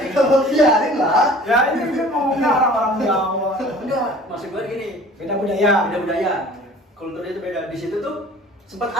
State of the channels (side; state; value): both; normal; correlation 0.47